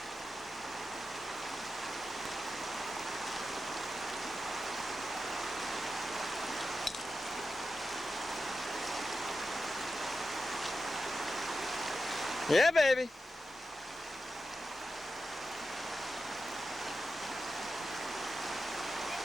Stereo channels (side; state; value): both; normal; correlation 0.90